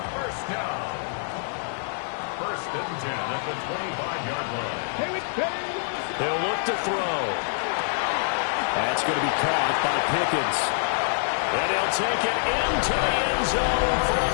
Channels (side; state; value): right; silent; 61 dB below the other